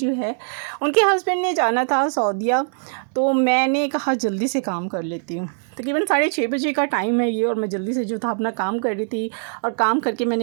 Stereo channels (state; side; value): silent; left; 64 dB below the other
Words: है, उनके हस्बैंड ने जाना था सऊदीया। तो मैंने कहा जल्दी से काम कर लेती हूँ। तकरीबन 6:30 बजे का टाइम है ये, और मैं जल्दी से जो था अपना काम कर रही थी। और काम करके